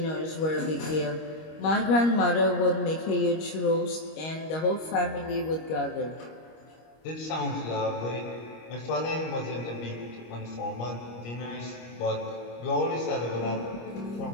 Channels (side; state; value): right; late; 25 ms